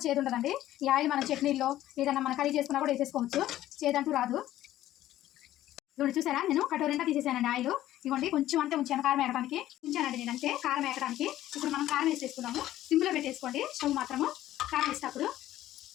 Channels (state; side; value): quieter; right; 13.8 dB